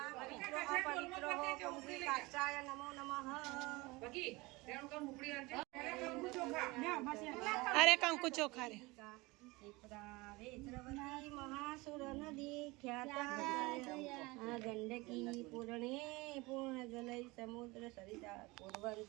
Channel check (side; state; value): left; quieter; 23.2 dB